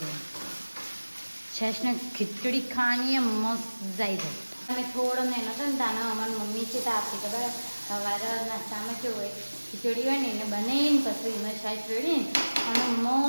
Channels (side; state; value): both; inverted; correlation -1.00